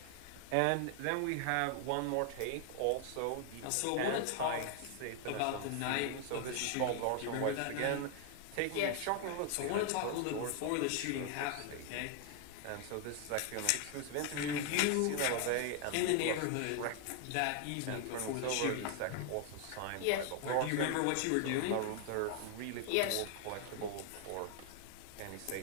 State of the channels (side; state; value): both; different; correlation 0.00